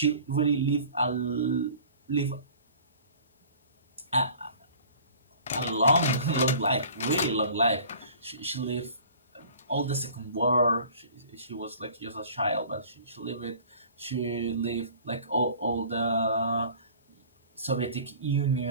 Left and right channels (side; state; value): both; inverted; correlation -0.47